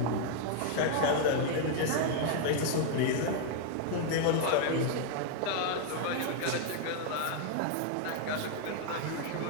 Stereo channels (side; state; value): both; different; correlation 0.00